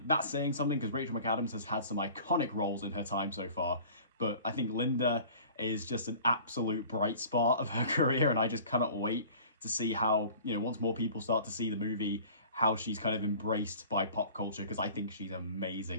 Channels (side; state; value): both; inverted; correlation -0.46